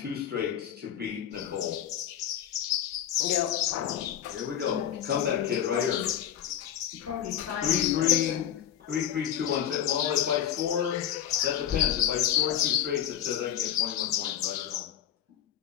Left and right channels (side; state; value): right; quieter; 10.2 dB